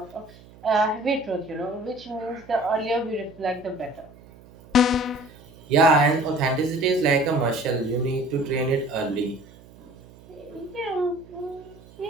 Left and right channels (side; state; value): right; noise; hum, 23 dB below the sound